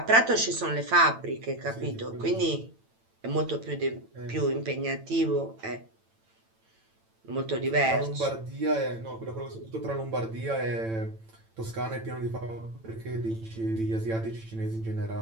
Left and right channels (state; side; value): late; left; 8.9 ms